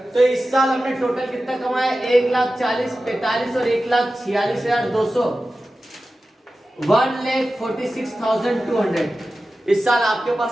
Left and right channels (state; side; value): normal; both; correlation 0.94